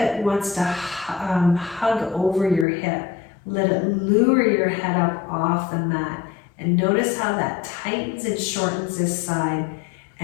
wants to hug over your hip. Let it lure your head up off the mat. And notice how that tightens and shortens this side.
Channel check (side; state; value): right; drops out; at 2.7 s